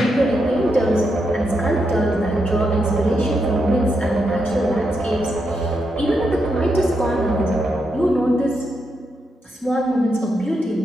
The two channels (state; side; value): normal; both; correlation 0.83